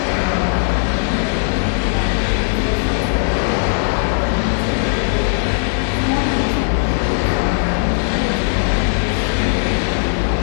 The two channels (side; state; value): right; silent; 67 dB below the other